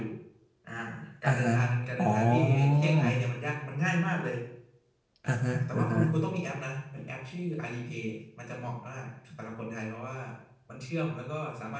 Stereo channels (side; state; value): both; identical; correlation 1.00